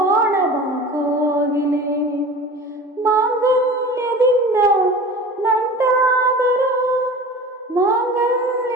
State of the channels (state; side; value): normal; both; correlation 0.38